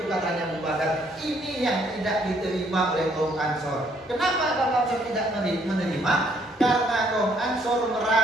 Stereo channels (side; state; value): both; normal; correlation 0.67